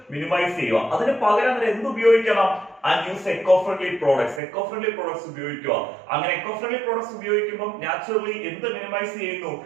minimize ചെയ്യുക. അതിന് പകരം എന്ത് ഉപയോഗിക്കണം, and use eco-friendly products. eco-friendly products ഉപയോഗിക്കുക. അങ്ങനെ eco-friendly products ഉപയോഗിക്കുമ്പോൾ naturally എന്ത് മിനിമൈസ് ചെയ്യുന്നു,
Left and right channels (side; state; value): left; drops out; at 4.4 s